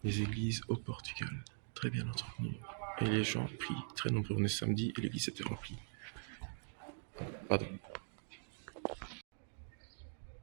Les églises au Portugal, très bien entretenues. Et les gens prient, très nombreux. On est samedi et l'église était remplie. Pardon.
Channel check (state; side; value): silent; left; digital silence